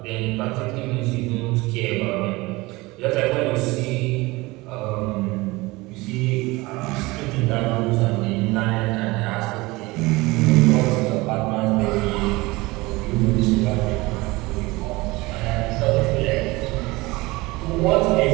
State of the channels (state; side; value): quieter; left; 21.9 dB